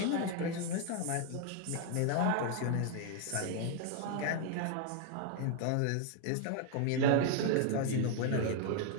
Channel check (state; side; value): different; both; correlation 0.00